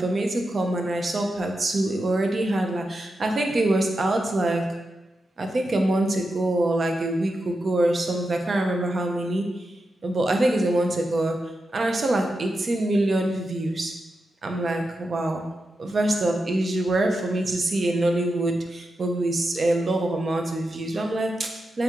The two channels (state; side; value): normal; both; correlation 0.88